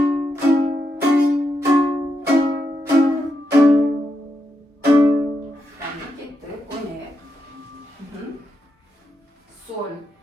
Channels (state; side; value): normal; both; correlation 0.83